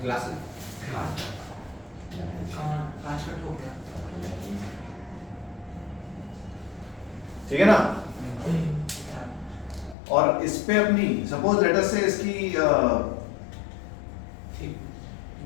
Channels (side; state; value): right; drops out; at 10.0 s